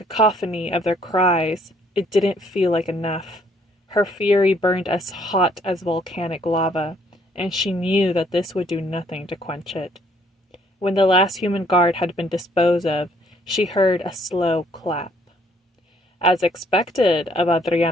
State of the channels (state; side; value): normal; both; correlation 0.64